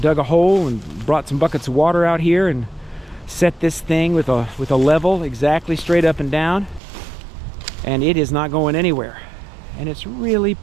dug a hole and brought some buckets of water out here and set this thing with a level exactly straight up and down. And it is not going anywhere, and it's really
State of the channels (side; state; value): left; drops out; at 6.8 s